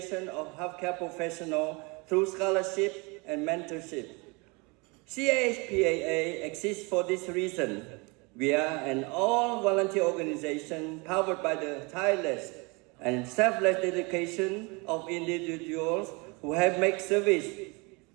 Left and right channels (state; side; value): quieter; left; 28.7 dB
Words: of healthcare professionals through scholarship and mentorship. CHPAA exists for this reason. We are an all-volunteer organization powered by the tireless and selfless dedication of individuals who have made service